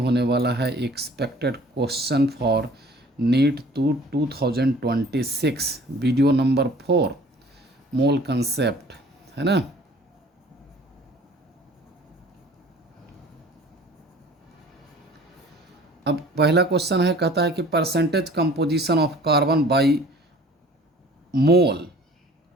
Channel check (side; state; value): both; normal; correlation 0.50